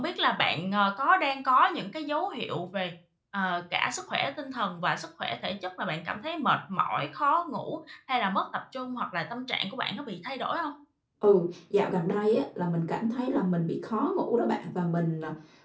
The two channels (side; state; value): both; identical; correlation 1.00